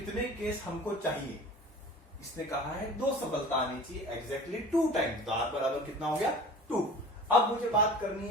केस हमको चाहिए। इसने कहा है 2 सफलता आनी चाहिए, एग्जैक्टली 2 टाइम्स, तो r बराबर कितना हो गया 2। अब मुझे बात करनी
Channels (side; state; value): both; normal; correlation 0.40